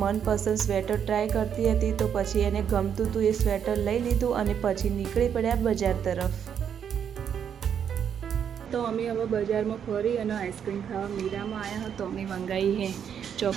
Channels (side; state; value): left; quieter; 8.2 dB